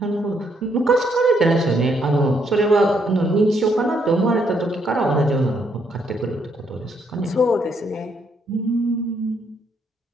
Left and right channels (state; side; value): normal; both; correlation 0.73